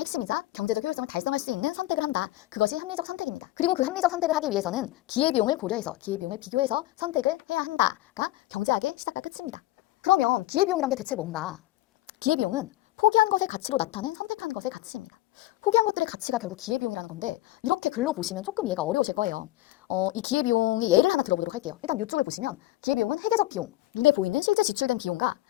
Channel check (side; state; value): right; quieter; 16.7 dB